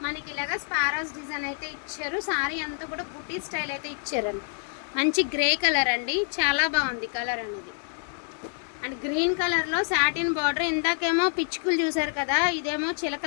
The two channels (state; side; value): silent; right; 60 dB below the other